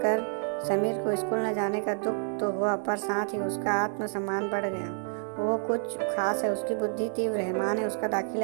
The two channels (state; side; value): silent; left; 59 dB below the other